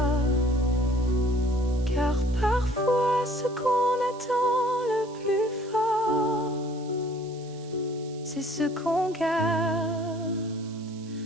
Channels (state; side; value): noise; right; hiss, 23 dB below the sound